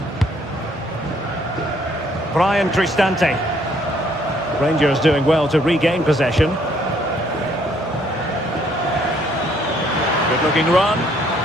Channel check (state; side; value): normal; both; correlation 0.66